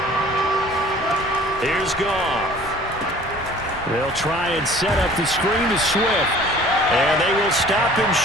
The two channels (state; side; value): normal; both; correlation 0.49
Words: Here's Goff. They'll try and set up the screen to Swift. And they will stop him